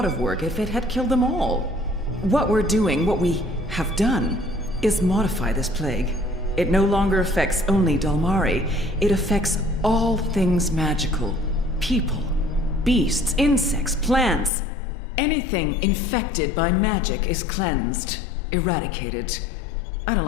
of work if it had killed them all. What we have done, is modify this plague. It no longer affects only Dolmari. It affects all things magical. People, beasts, insects, plants. Anything infected by magic is cleansed, eradicated. I don't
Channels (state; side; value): drops out; right; at 14.5 s